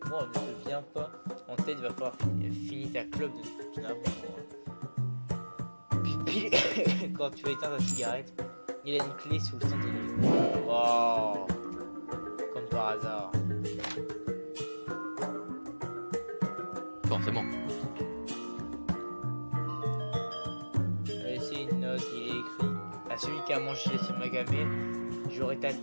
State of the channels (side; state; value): both; inverted; correlation -1.00